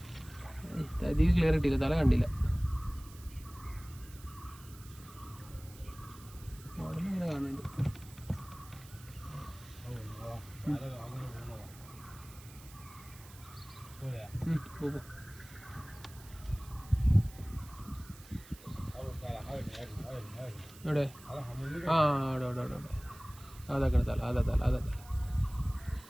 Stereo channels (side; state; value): right; noise; hiss, 20 dB below the sound